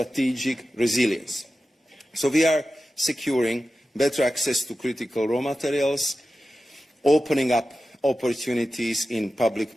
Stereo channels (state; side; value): normal; both; correlation 0.93